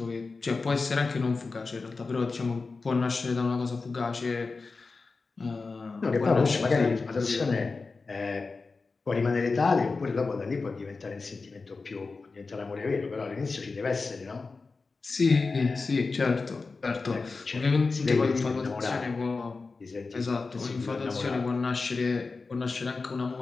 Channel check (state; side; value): quieter; right; 4.1 dB